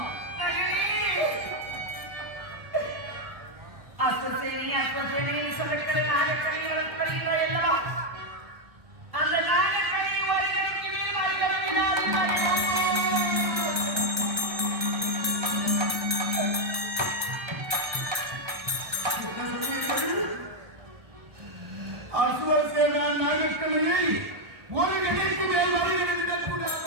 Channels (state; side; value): late; left; 1.2 ms